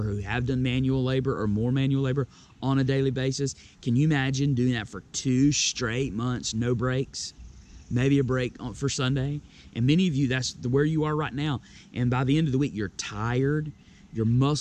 who have done manual labor or more manual labor on a daily basis, can you imagine doing that for 2 straight months, no breaks? Maybe a break for Sunday. And many of you, that's where you are right now. And by the end of the week, you're tired, your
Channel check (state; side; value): identical; both; correlation 1.00